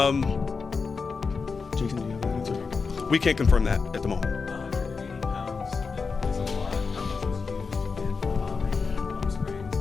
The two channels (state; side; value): quieter; right; 4.9 dB